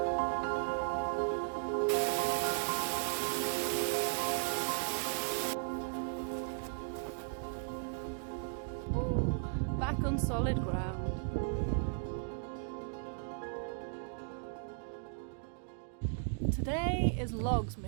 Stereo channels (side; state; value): left; silent; digital silence